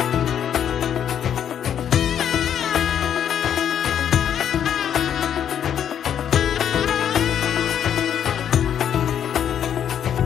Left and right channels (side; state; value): right; quieter; 9.2 dB